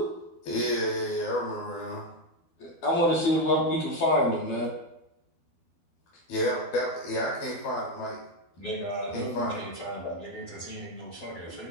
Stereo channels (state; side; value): late; right; 12 ms